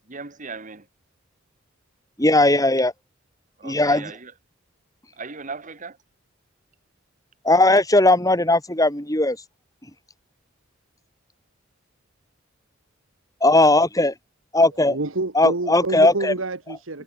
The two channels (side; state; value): both; normal; correlation 0.54